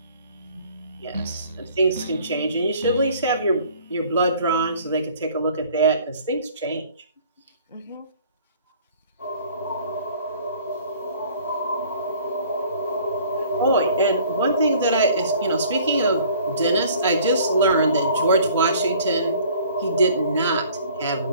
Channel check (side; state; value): both; inverted; correlation -0.53